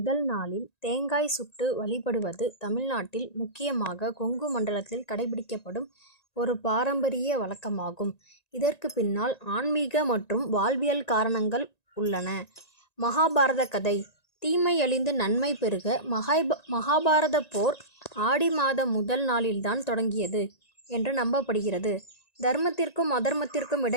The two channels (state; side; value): late; right; 1.9 ms